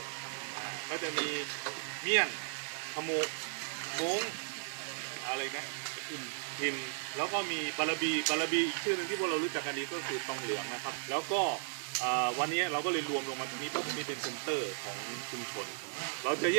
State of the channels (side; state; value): left; silent; digital silence